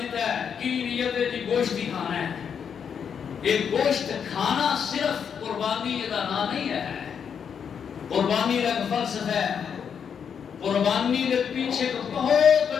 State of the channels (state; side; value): quieter; right; 7.3 dB